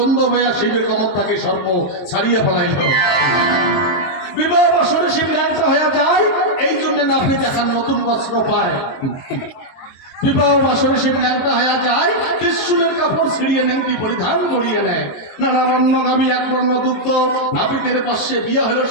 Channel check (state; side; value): late; right; 23 ms